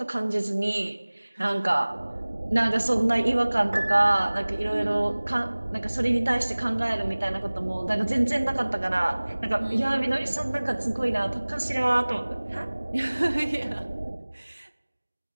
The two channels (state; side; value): inverted; both; correlation -1.00